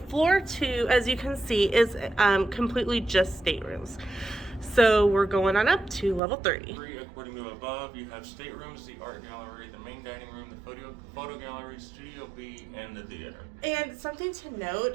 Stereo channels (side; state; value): left; drops out; at 6.2 s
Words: floor 2, as you can see, is completely just staterooms. So we're going on up to level 3. According to above, you have staterooms, the art gallery, the main dining room, the photo gallery, Studio B, and the theater. And something to